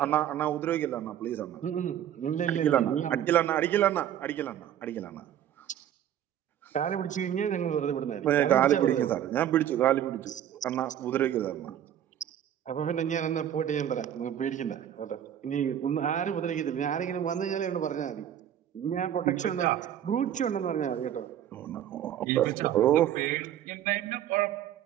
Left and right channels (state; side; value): quieter; left; 10.6 dB